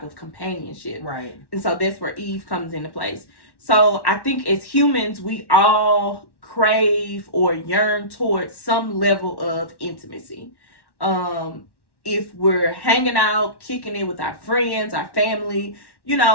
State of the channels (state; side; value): late; right; 1.1 ms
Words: of companionship. Right. And so that's where Eve comes into place. So I think as humans, we all crave or yearn towards some level of intimacy. If we're hanging out, kicking it with our friends, our family,